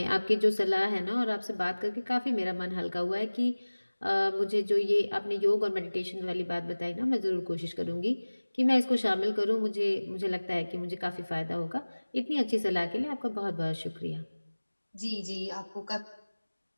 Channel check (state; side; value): inverted; both; correlation -1.00